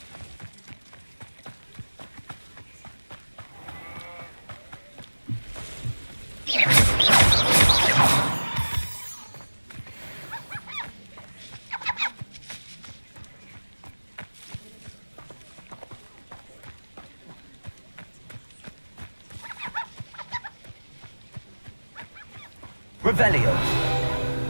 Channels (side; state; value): both; inverted; correlation -1.00